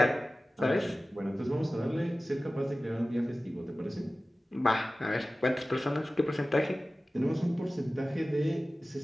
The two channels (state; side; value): normal; both; correlation 0.96